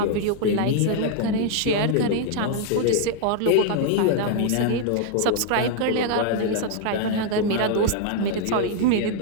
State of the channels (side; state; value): both; different; correlation 0.00